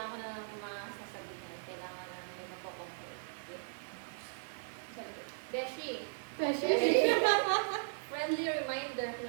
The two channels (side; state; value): left; silent; digital silence